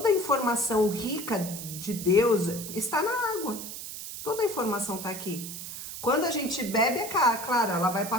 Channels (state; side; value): noise; right; hiss, 9 dB below the sound